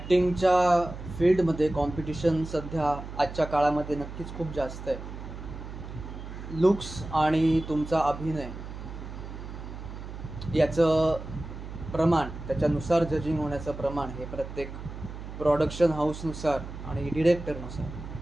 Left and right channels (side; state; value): right; noise; hum, 10 dB below the sound